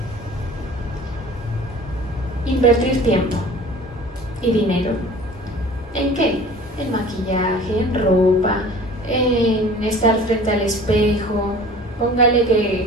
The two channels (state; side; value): normal; both; correlation 0.45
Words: Invertir tiempo y dinero. ¿En qué? En maquillaje, en ropa, en estar frente al espejo. Póngale